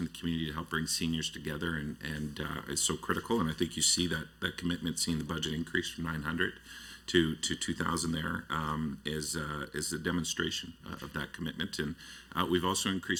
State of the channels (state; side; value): identical; both; correlation 1.00